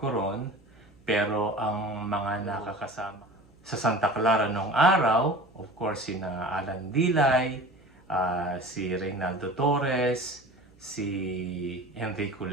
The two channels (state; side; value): noise; right; hum, 29 dB below the sound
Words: ron, pero ang mga nakakasama sa Santa Clara noong araw, of course, sina Alan Dilay, si Reynaldo Torres, si Enrico